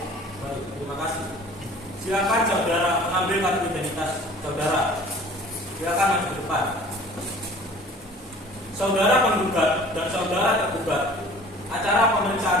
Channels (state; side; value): normal; both; correlation 0.47